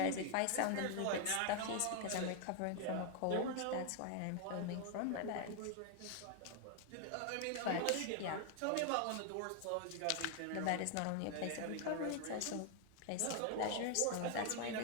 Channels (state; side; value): different; both; correlation 0.00